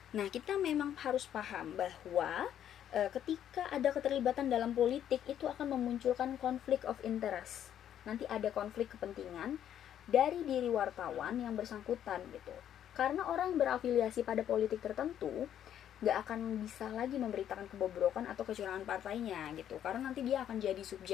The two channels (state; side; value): quieter; right; 10.3 dB